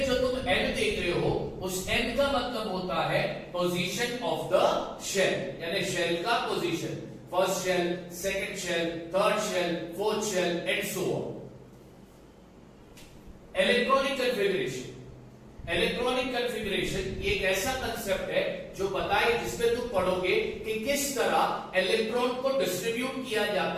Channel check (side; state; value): both; identical; correlation 1.00